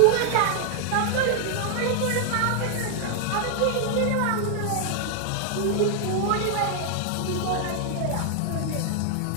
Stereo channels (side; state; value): both; different; correlation 0.00